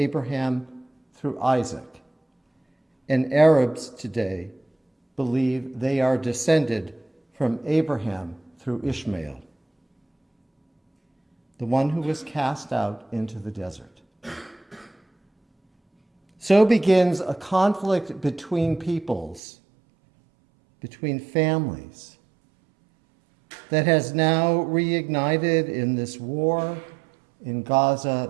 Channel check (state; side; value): drops out; left; at 19.4 s